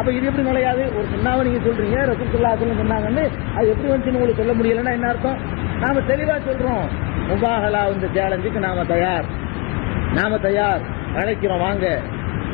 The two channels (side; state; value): right; quieter; 27.4 dB